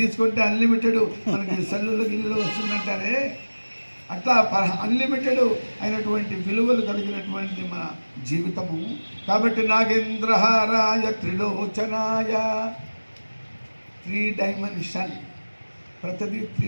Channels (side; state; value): both; inverted; correlation -1.00